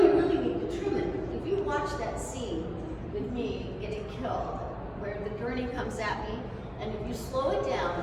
really need to trim it." If you watch that scene with me getting killed, where the gurney comes at me, and if you slow it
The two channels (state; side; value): identical; both; correlation 1.00